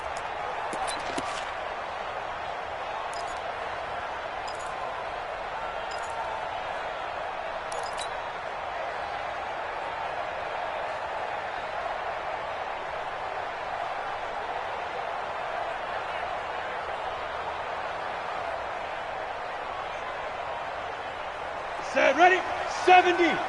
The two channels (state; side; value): identical; both; correlation 1.00